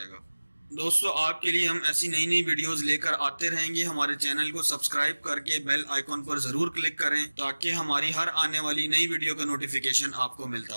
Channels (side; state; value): both; inverted; correlation -1.00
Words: दोस्तों आपके लिए हम ऐसी नई नई वीडियोस लेकर आते रहेंगे। हमारे चैनल को सब्सक्राइब करके बेल आइकॉन पर जरूर क्लिक करें ताकि हमारी हर आने वाली नई वीडियो का नोटिफिकेशन आपको